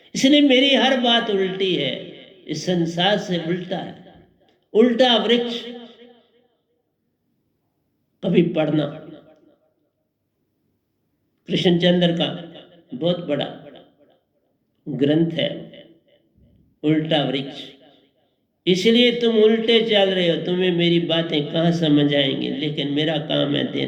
इसलिए मेरी हर बात उल्टी है, इस संसार से उल्टा है। उल्टा वृक्ष कभी पढ़ना, कृष्णचंद्र का बहुत बड़ा ग्रंथ है उल्टा वृक्ष। इसलिए तुम उल्टे चल रहे हो, तुम्हें मेरी बातें कहां समझ आएंगी, लेकिन मेरा काम है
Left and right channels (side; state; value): both; identical; correlation 1.00